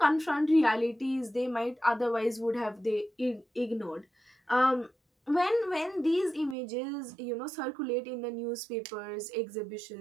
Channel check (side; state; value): left; drops out; at 6.6 s